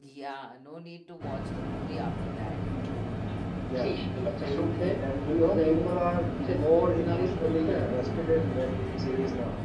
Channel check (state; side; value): identical; both; correlation 1.00